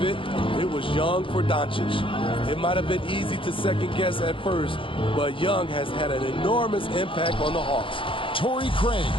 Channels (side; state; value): right; late; 0.25 ms